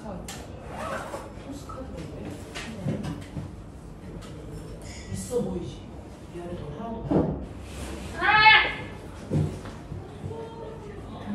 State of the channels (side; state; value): both; identical; correlation 1.00